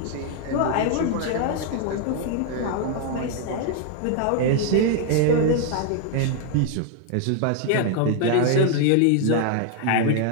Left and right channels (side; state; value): both; different; correlation 0.00